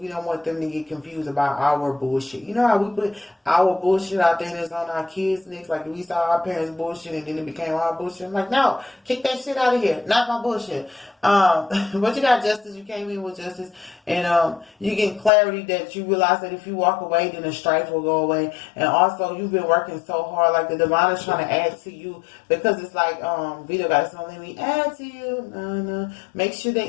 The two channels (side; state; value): right; drops out; at 15.3 s